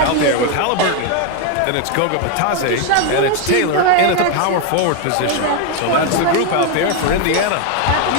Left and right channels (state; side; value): different; both; correlation 0.01